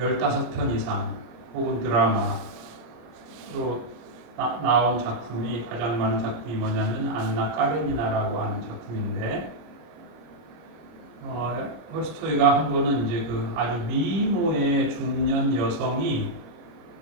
이상 혹은 드라마로 나온 작품이 가장 많은 작품이 뭐냐면 안나 까레니나라고 하는 작품인데 톨스토이가 한 번은 이제 그 아주 미모의 중년 여성이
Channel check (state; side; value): late; left; 25 ms